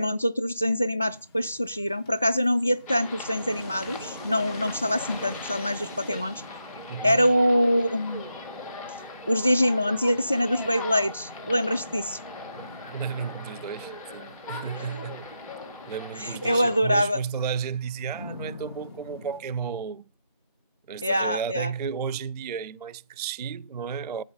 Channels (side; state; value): both; inverted; correlation -0.83